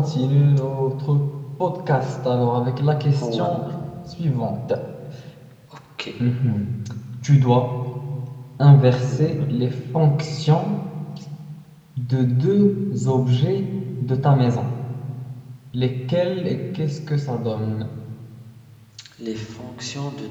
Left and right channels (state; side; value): identical; both; correlation 1.00